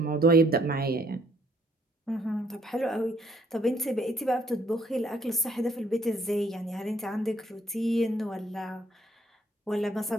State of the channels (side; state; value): both; normal; correlation 0.67